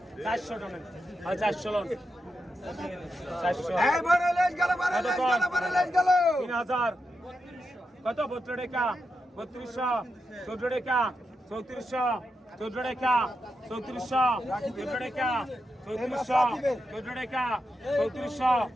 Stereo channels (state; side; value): normal; both; correlation 0.86